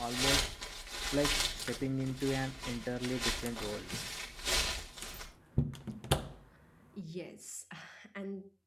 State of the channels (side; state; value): both; identical; correlation 1.00